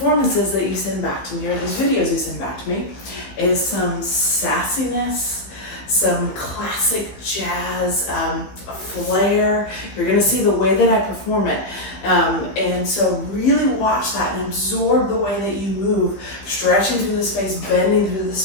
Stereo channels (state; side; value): late; right; 15 ms